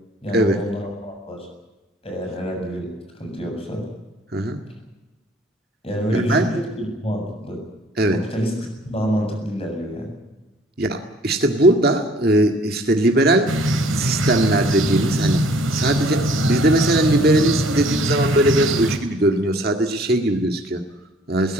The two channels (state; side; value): normal; both; correlation 0.56